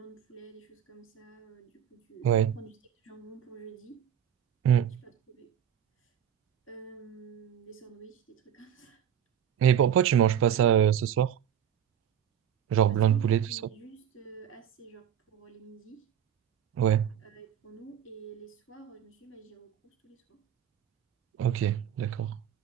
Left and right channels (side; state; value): left; quieter; 9.4 dB